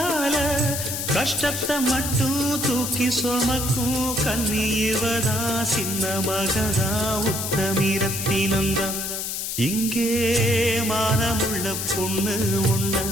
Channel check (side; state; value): left; noise; hiss, 3 dB below the sound